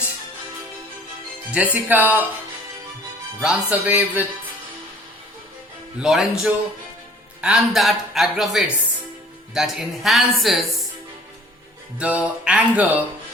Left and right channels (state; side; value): normal; both; correlation 0.52